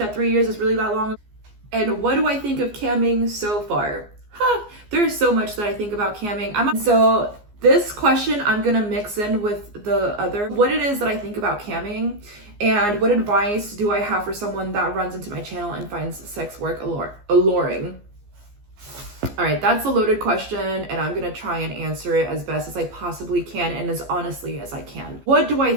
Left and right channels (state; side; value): late; left; 14 ms